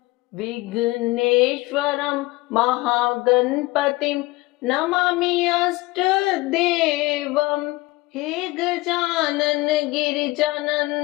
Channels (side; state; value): right; quieter; 21.0 dB